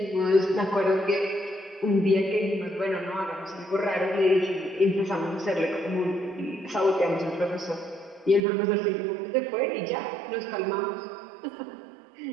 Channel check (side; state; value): left; drops out; at 8.5 s